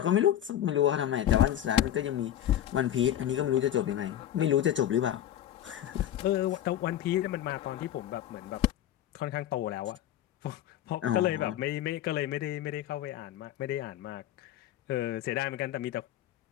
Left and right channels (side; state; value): right; quieter; 11.7 dB